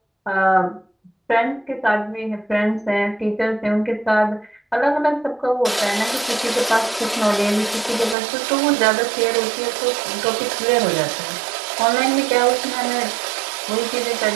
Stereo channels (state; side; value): drops out; left; at 8.2 s